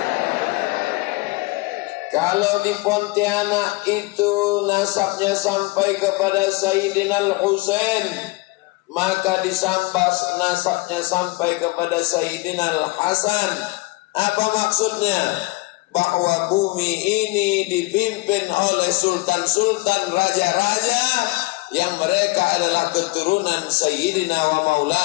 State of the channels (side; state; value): right; quieter; 23.7 dB